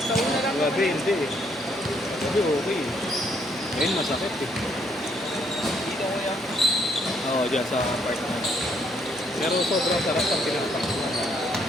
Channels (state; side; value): normal; both; correlation 0.70